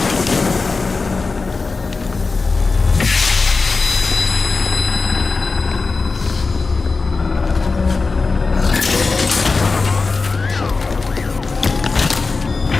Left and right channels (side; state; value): right; quieter; 4.1 dB